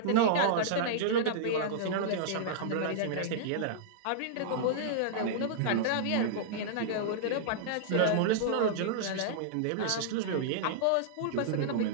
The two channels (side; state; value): both; different; correlation -0.02